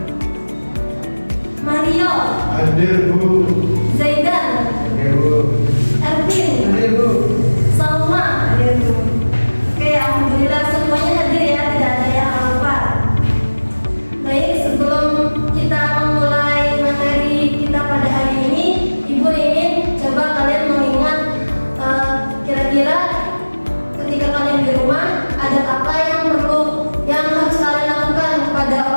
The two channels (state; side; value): inverted; both; correlation -1.00